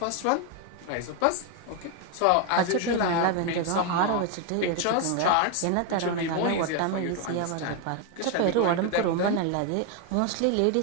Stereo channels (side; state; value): both; different; correlation 0.01